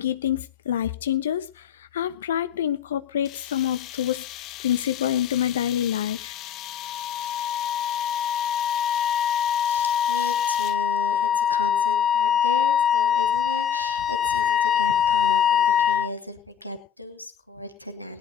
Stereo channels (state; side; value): quieter; right; 8.5 dB